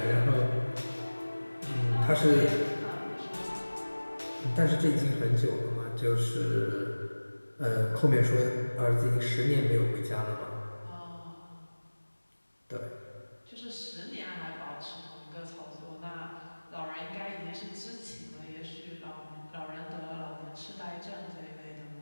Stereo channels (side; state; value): both; inverted; correlation -1.00